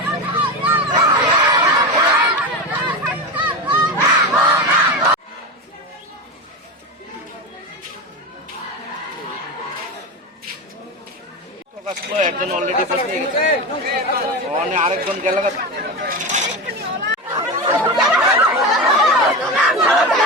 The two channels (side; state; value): both; normal; correlation 0.20